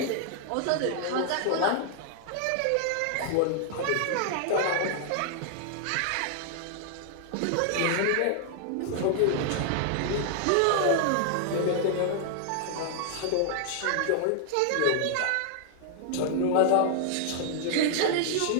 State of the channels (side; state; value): both; different; correlation -0.01